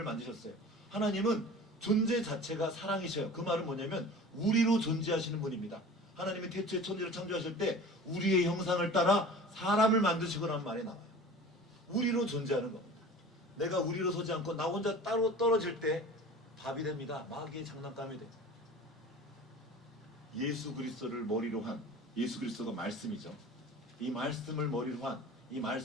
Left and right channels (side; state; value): both; normal; correlation 0.40